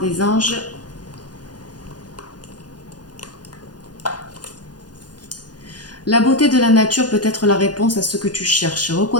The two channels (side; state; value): right; late; 0.69 ms